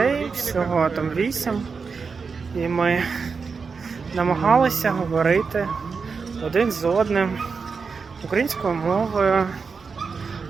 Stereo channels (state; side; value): quieter; left; 5.2 dB